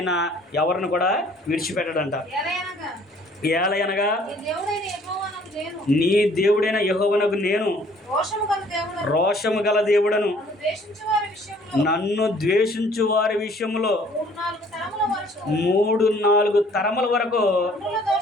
ఎవరిని కూడా విడిచిపెట్టడంట. ఏలయనగా నీ దేవుడైన యెహోవానగు నేను రోషము గల దేవుడను, నన్ను ద్వేషించు వారి విషయంలో 3-4 తరముల వరకు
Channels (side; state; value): both; normal; correlation 0.57